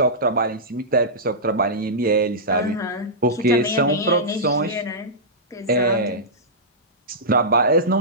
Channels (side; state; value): both; normal; correlation -0.14